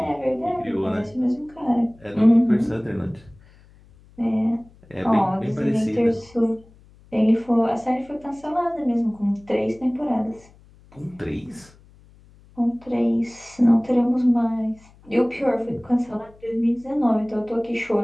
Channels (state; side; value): noise; left; hum, 26 dB below the sound